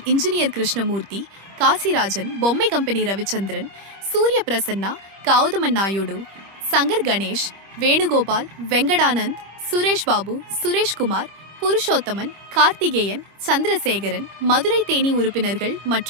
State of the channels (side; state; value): left; late; 25 ms